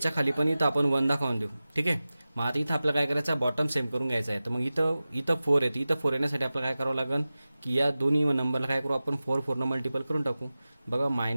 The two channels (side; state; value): both; inverted; correlation -0.96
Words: खाली पण इथं आपण 1 दाखवून देऊ. ठीक आहे, मग आता इथं आपल्याला काय करायचं, बॉटम सेम करून घ्यायचा आहे. तर मग इथं 4 येते, इथं 4 येण्यासाठी आपल्याला काय करावं लागेल की या दोन्ही नंबरला काय करू आपण, 4 ने मल्टिपल करून टाकू. बघा